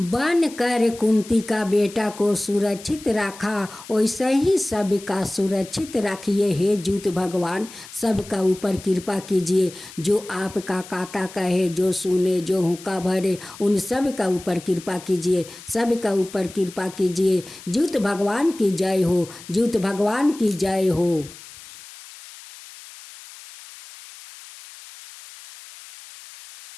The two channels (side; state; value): left; noise; hiss, 17 dB below the sound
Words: कर कुंती का बेटा को सुरक्षित रखा, वैसे ही सबका सुरक्षित रखिए। हे ज्यूत भगवान, सबका ऊपर कृपा कीजिए, जो आपका काता कहे, जो सुने, जो हुक्का भरे, उन सब का ऊपर कृपा कीजिए, सबका ऊपर कृपा कीजिए। ज्यूत भगवान की जय हो, ज्यूत भगवान की जय हो।